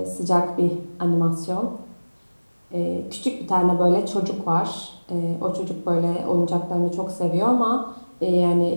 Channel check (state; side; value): inverted; both; correlation -1.00